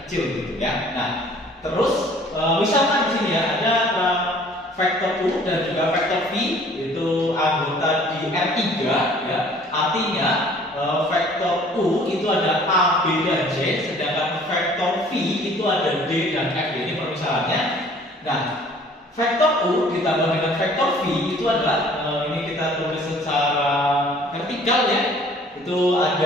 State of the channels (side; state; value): both; normal; correlation 0.53